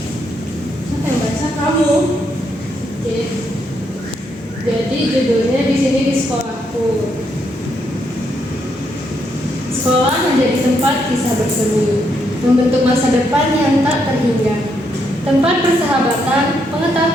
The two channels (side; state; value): both; normal; correlation 0.77